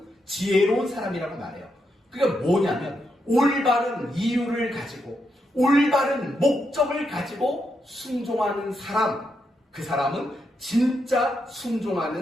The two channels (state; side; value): normal; both; correlation 0.82